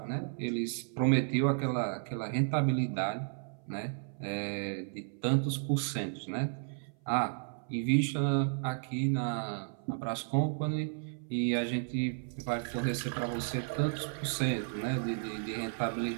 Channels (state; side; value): silent; left; 56 dB below the other